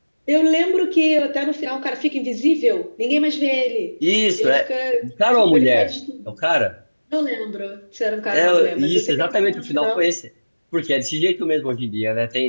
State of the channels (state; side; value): inverted; both; correlation -1.00